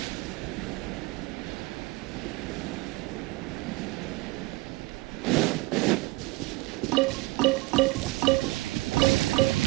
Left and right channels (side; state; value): left; quieter; 21.8 dB